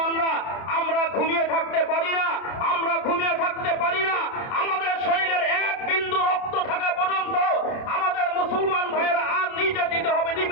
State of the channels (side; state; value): right; late; 30 ms